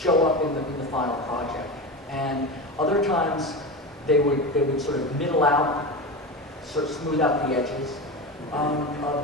up in the final project. And other times, they would sort of middle out, sort of smooth out the edges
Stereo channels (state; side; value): normal; both; correlation 0.24